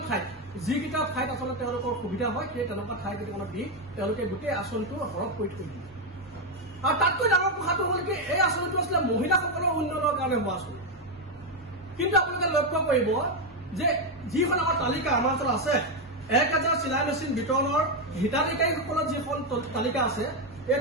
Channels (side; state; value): both; normal; correlation 0.05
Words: ঠাইত যিকেইটা ঠাইত আচলতে তেওঁলোকৰ সুবিধা হয় সেই তেনেকুৱা ঠাই কেইটামানত দি তেওঁলোকে গোটেই আঁচনিটো সৰহ কৰি থৈ দিয়ে আৰু তাতকৈ ডাঙৰ কথাটো হ'ল কি এই আঁচনিটো আছিলে মহিলাসকলৰ উন্নয়নৰ কাৰণে হোৱা আঁচনি কিন্তু আপোনালোকে লক্ষ্য কৰিব যে যিখন আমাৰ তালিকা আমাৰ ওচৰত আছে 1000 চিলাই মেচিন বিতৰণৰ হিতাধিকাৰীসকলৰ যিখন তালিকা আছে এই